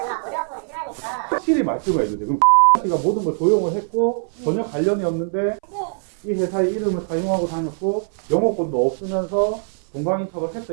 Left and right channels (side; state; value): left; silent; 61 dB below the other